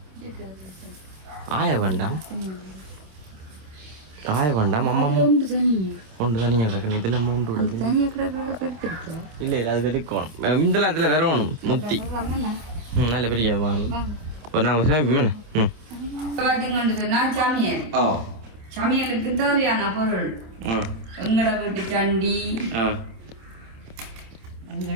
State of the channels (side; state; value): left; late; 27 ms